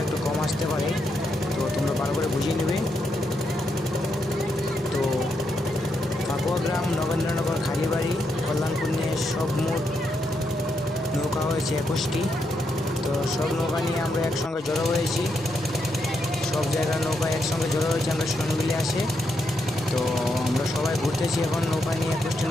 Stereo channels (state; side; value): normal; both; correlation 0.81